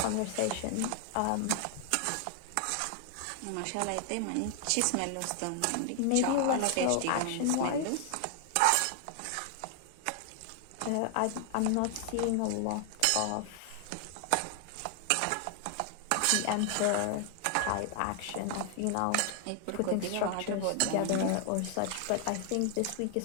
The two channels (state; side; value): different; both; correlation 0.00